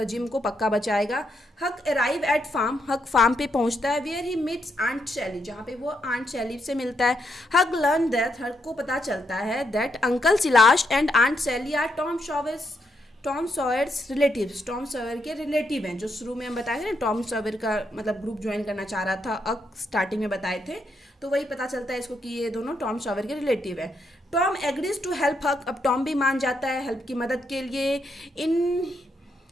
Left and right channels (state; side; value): normal; both; correlation 0.79